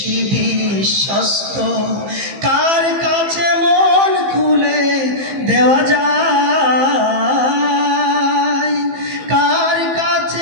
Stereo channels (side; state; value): left; late; 15 ms